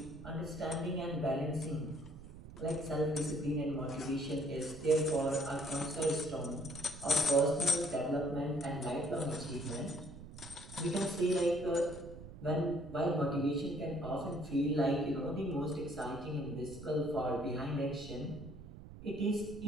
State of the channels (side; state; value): right; noise; rumble, 14 dB below the sound